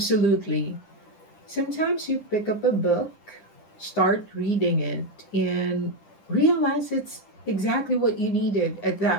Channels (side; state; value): right; late; 9.7 ms